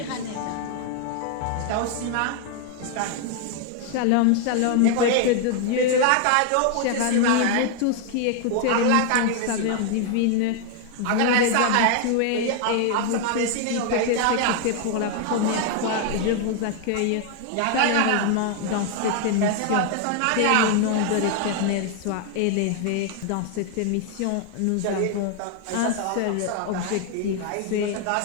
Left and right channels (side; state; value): both; different; correlation 0.00